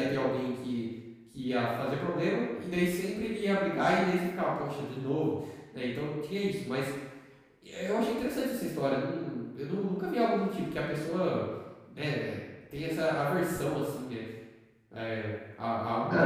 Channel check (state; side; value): identical; both; correlation 1.00